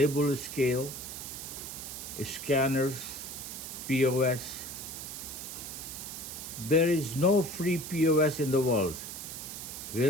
scale, scanners, POS. There is no free POS in the world.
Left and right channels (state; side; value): noise; right; hiss, 8 dB below the sound